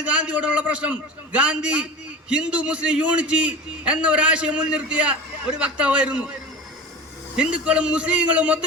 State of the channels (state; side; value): normal; both; correlation 0.32